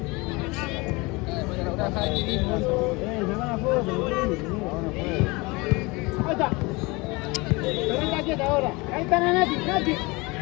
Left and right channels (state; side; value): quieter; right; 25.1 dB